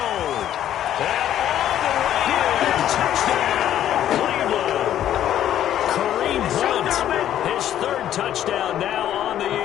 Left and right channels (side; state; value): right; quieter; 11.3 dB